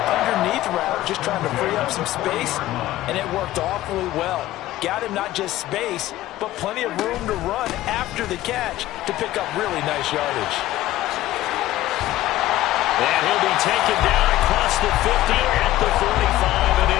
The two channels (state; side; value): quieter; right; 15.3 dB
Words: underneath route, just trying to free up some space, and it worked awfully well. Got him not just space, but plenty of room to run after the catch to pick up really nice yardage. And he'll be taken down across the 50 at the 45 in